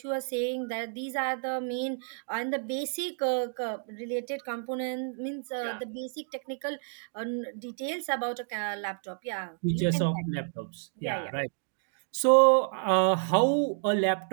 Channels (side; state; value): left; silent; digital silence